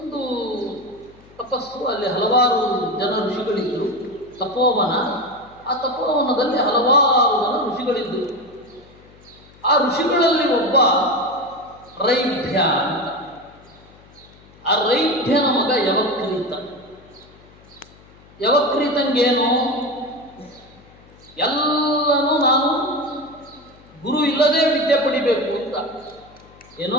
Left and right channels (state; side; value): noise; left; hum, 25 dB below the sound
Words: ತಪಸ್ಸು, ಅಲ್ಲಿ ಹಲವಾರು ಜನ ಋಷಿಗಳಿದ್ದರು. ತಪೋವನ, ಆ ತಪೋವನದಲ್ಲಿ ಹಲವಾರು ಜನ ಋಷಿಗಳಿದ್ದರು. ಆ ಋಷಿಗಳಲ್ಲಿ ಒಬ್ಬ ರೈಭ್ಯ ಅಂತ. ಆ ರೈಭ್ಯನ ಮಗ ಯವಕ್ರೀತ. ಯವಕ್ರೀತಂಗೇನು? ಎಲ್ಲನೂ ನಾನು ಗುರು ಇಲ್ಲದೆ ವಿದ್ಯೆ ಪಡಿಬೇಕು ಅಂತ.